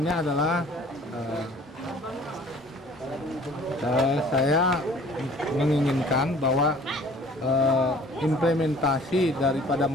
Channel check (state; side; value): normal; both; correlation 0.52